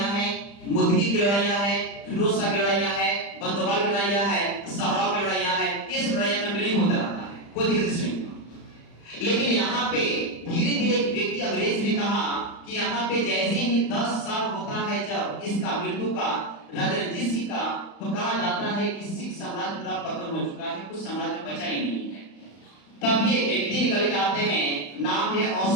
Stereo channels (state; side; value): late; right; 35 ms